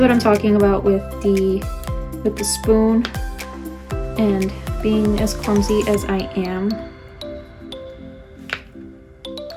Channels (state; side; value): identical; both; correlation 1.00